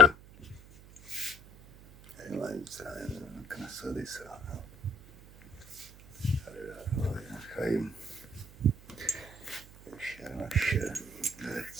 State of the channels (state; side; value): noise; right; hum, 20 dB below the sound